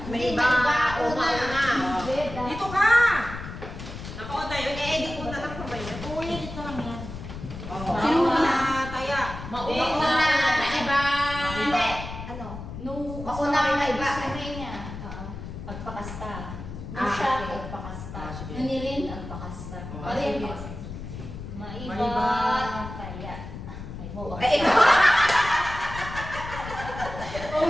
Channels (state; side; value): noise; left; rumble, 10 dB below the sound